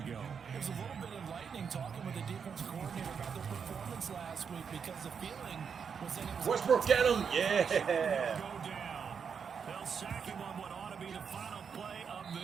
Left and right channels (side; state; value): left; quieter; 6.6 dB